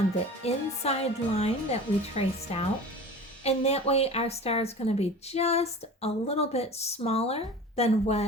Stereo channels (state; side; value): normal; both; correlation 0.37